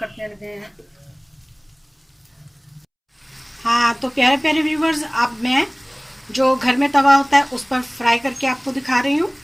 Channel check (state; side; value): identical; both; correlation 1.00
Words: लगे हैं। हाँ तो प्यारे प्यारे व्यूवर्स, अब मैं जो घर में तवा होता है उस पर फ्राई करके आपको दिखा रही हूँ।